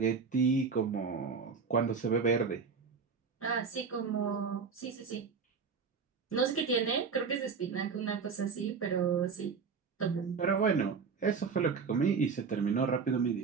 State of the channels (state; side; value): quieter; left; 5.5 dB